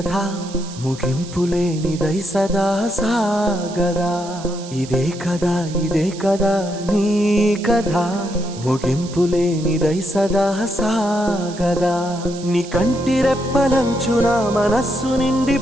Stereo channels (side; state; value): right; noise; hiss, 16 dB below the sound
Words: ముగింపులేనిదై సదా సాగదా. ఇదే కదా నీ కథ ముగింపులేనిదై సదా సాగదా. నీ కంటి రెప్పలంచున మనస్సు నిండి